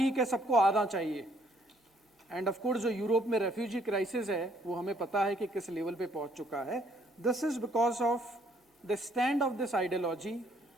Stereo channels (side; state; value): both; normal; correlation 0.66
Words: है सबको आना चाहिए। एंड ऑफ कोर्स जो यूरोप में रेफ्यूजी क्राइसिस है वो हमें पता है कि किस लेवल पे पहुंच चुका है। This is because of the stand of this ideology